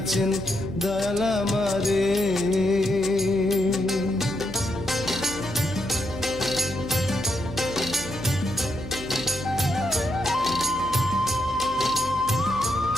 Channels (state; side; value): noise; right; hum, 11 dB below the sound